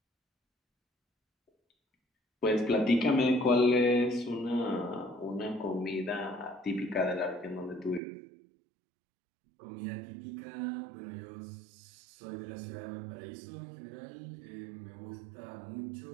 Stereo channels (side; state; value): left; drops out; at 8.0 s